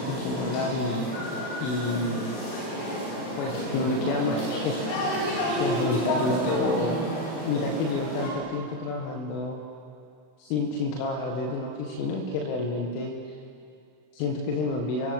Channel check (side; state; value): right; late; 31 ms